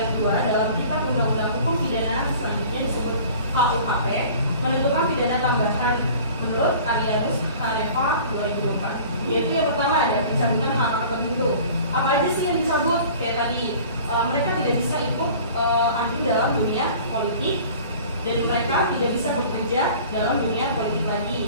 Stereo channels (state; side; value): inverted; both; correlation -0.45